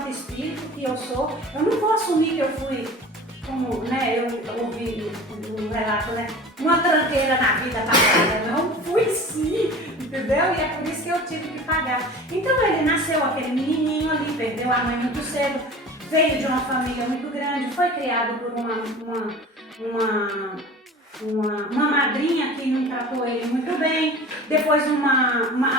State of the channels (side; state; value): both; normal; correlation 0.39